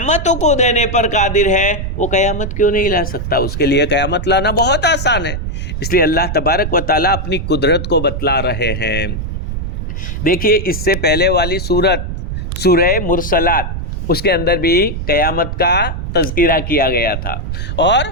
کو دینے پر قادر ہے، وہ قیامت کیوں نہیں لا سکتا؟ اس کے لیے قیامت لانا بہت آسان ہے۔ اس لیے اللہ تبارک و تعالیٰ اپنی قدرت کو بتلا رہے ہیں۔ دیکھیے اس سے پہلے والی سورہ مرسلات، اس کے اندر بھی قیامت کا تذکرہ کیا گیا تھا، اور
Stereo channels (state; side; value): noise; right; rumble, 4 dB below the sound